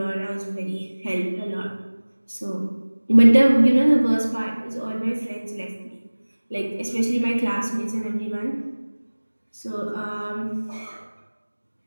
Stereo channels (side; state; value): both; inverted; correlation -1.00